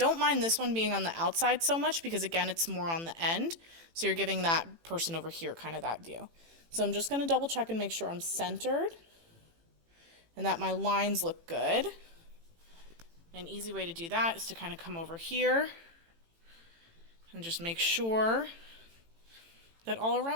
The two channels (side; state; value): left; late; 18 ms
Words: mind this one being on the outside so much because, again, it's more on the end. So you're giving that person over here kind of that view. So I'm just going to double check and make sure I'm centered and that my lines look good. An easy way to do that is to kind of come over here and just make sure that all